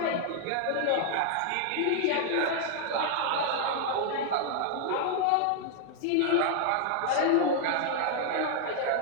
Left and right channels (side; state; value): both; different; correlation 0.00